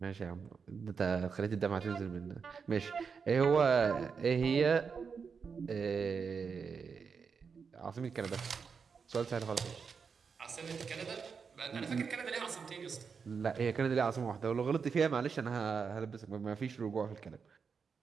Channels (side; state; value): left; quieter; 5.8 dB